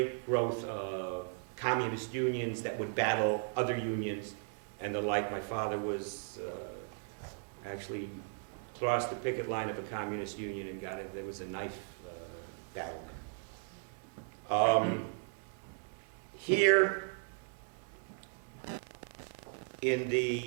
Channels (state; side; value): silent; left; 53 dB below the other